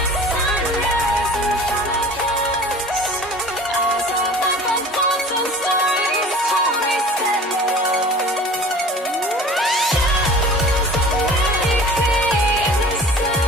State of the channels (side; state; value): both; normal; correlation 0.42